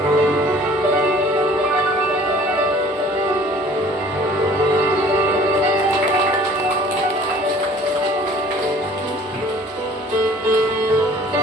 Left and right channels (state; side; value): normal; both; correlation 0.51